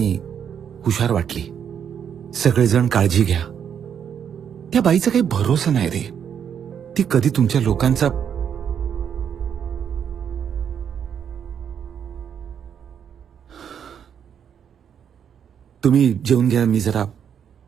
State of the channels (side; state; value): left; quieter; 8.2 dB